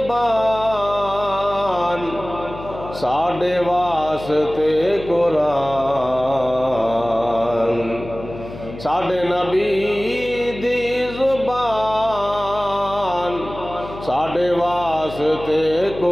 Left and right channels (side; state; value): left; noise; hum, 13 dB below the sound